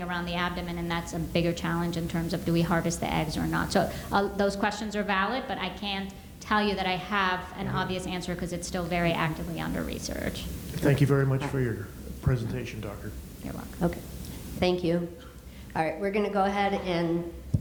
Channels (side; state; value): both; identical; correlation 1.00